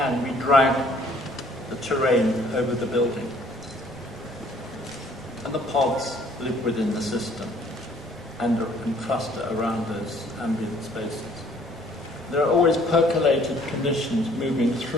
we drag the terrain over the building. And the pods live within the system and cluster around those ambient spaces. There are always percolated conditions moving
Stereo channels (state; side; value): noise; right; rumble, 25 dB below the sound